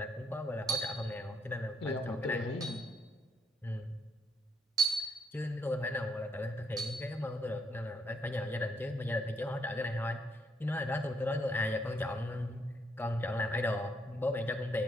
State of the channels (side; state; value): both; normal; correlation 0.73